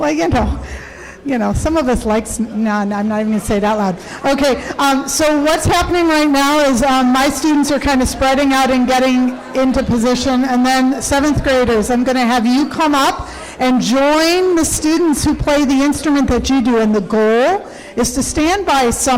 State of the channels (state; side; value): identical; both; correlation 1.00